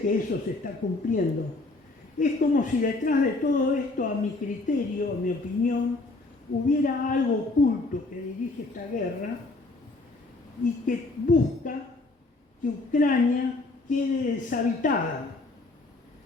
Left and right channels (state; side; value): quieter; right; 3.2 dB